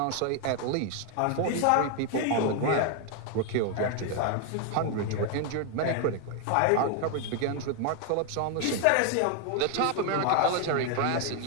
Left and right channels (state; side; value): different; both; correlation 0.00